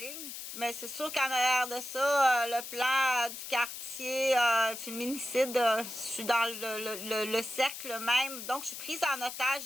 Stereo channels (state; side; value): noise; left; hiss, 9 dB below the sound